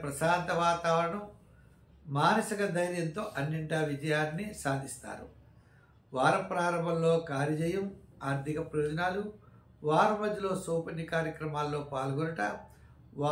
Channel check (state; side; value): identical; both; correlation 1.00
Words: ప్రశాంత వాతావరణం, మానసిక ధైర్యంతో అన్నింటా విజయాన్ని సాధిస్తారు. వార ప్రారంభంలో కార్యజయం, ఆర్థిక ప్రయోజనాలు, వార మధ్యలో సౌపన్య కార్యక్రమాల్లో పాల్గొనట,